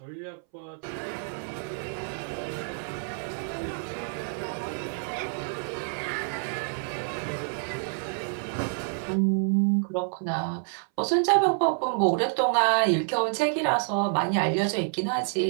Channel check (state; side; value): silent; left; 59 dB below the other